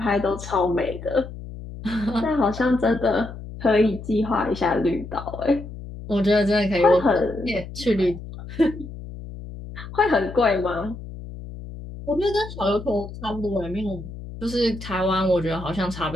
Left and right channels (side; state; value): left; noise; hum, 12 dB below the sound